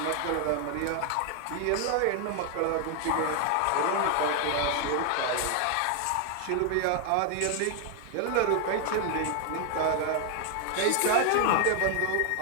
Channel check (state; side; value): different; both; correlation 0.00